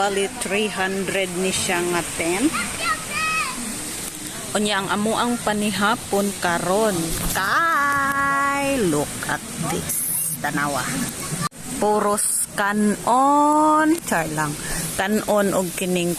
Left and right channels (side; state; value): both; identical; correlation 1.00